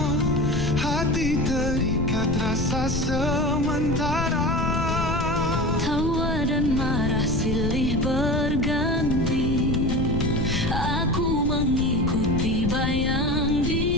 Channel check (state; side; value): noise; left; rumble, 2 dB below the sound